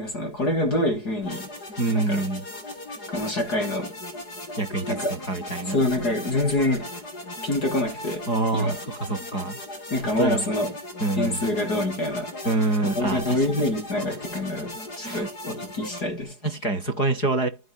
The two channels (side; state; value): right; late; 4.8 ms